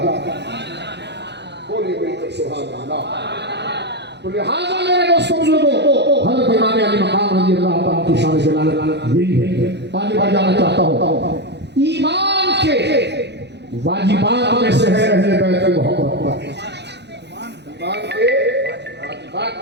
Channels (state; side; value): late; left; 0.50 ms